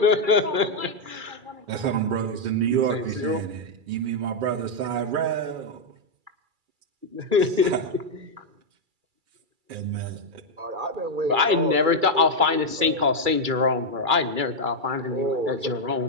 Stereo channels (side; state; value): left; late; 2.3 ms